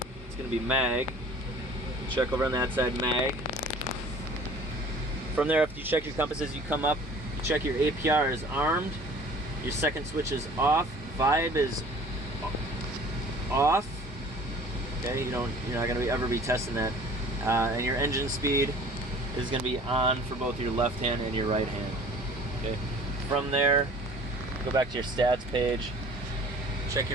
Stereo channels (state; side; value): normal; both; correlation 0.48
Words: it's going to be mag. Check over on that side, mag. From there, after you check your compasses, you come up, you check your APR is armed, your second switch is off, vibe is off. Okay, you're not going to ever be testing that. And your engine speed is going to be on for both your left hand and your right hand. Okay. From there, go back to your stats page, check